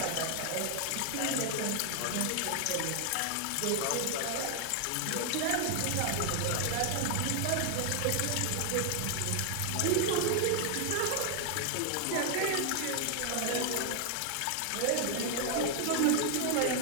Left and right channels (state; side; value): different; both; correlation 0.00